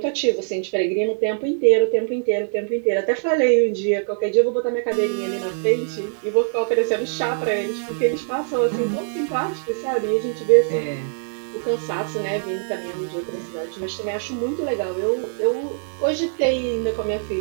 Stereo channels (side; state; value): left; silent; digital silence